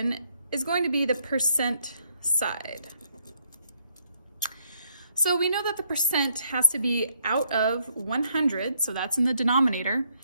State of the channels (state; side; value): inverted; both; correlation -0.71